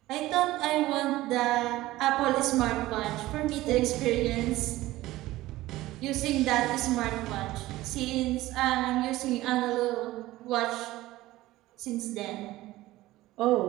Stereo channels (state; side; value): quieter; left; 17.1 dB